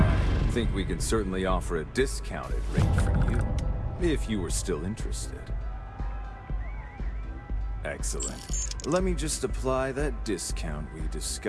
think we can certainly offer a discounted rate for you, if you were still interested. Excellent. Let me just apply that discount we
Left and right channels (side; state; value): both; identical; correlation 1.00